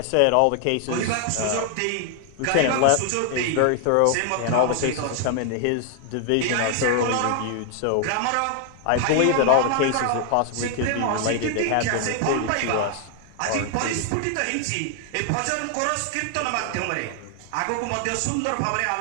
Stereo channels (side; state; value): both; different; correlation 0.00